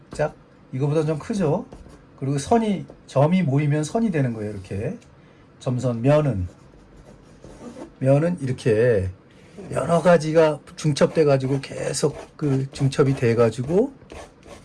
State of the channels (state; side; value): identical; both; correlation 1.00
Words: 이거보다 좀 크죠? 그리고 점이 모이면 선이 되는 거예요. 이렇게 점선, 면은 이렇게 여러 가지가 중첩돼 가지고 계속 중첩이 돼 가지고